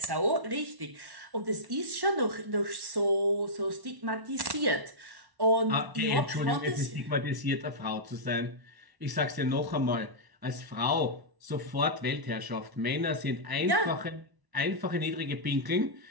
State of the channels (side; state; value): left; late; 1.0 ms